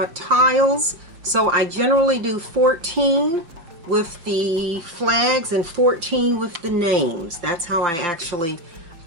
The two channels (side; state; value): left; late; 5.9 ms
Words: so I generally do 14 with the flags and 14 with the names. That's how I actually